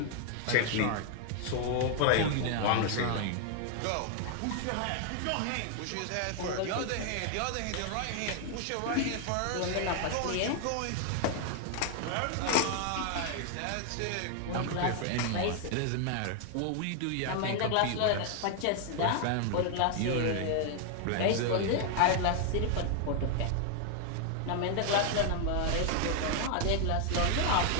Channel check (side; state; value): both; different; correlation 0.00